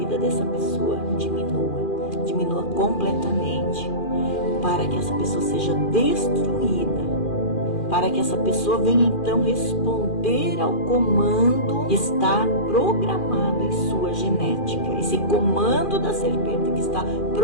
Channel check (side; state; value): right; late; 2.4 ms